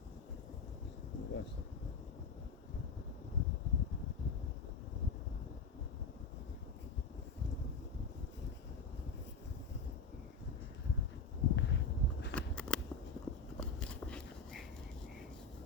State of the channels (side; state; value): right; quieter; 4.3 dB